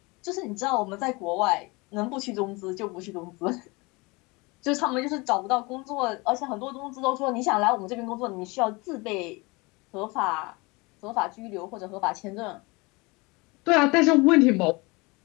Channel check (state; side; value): quieter; right; 25.7 dB